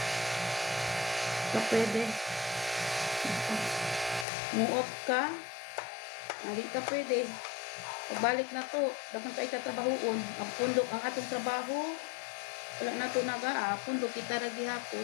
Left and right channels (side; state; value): right; drops out; at 4.2 s